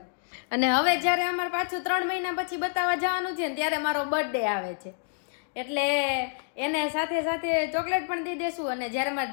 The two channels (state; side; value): silent; right; digital silence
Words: અને હવે જયારે અમારે પાછું 3 મહિના પછી બતાવવા જવાનું છે ને ત્યારે મારો બર્થડે આવે છે એટલે એને સાથે સાથે ચોકલેટ પણ દઈ દેશું. અને જયારે મારે